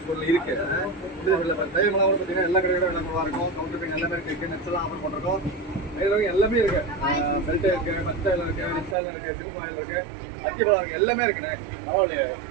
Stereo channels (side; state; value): left; drops out; at 9.0 s